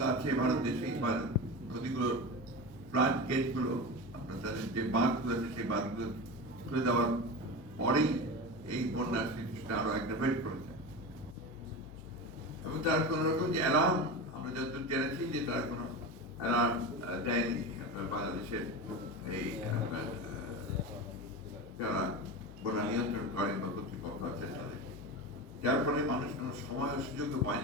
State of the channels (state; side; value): noise; left; hum, 17 dB below the sound